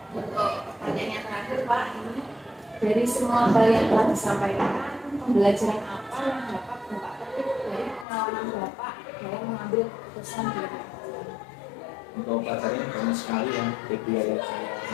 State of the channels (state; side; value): drops out; right; at 8.1 s